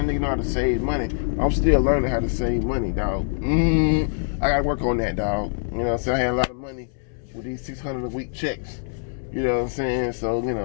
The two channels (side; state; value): right; silent; 63 dB below the other